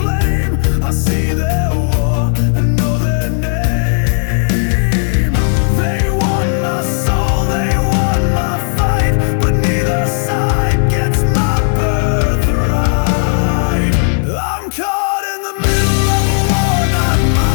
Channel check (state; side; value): silent; right; digital silence